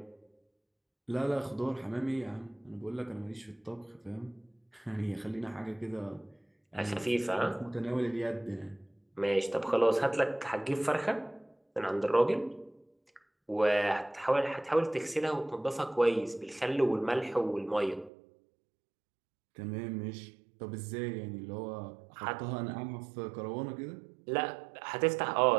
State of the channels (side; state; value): left; drops out; at 18.1 s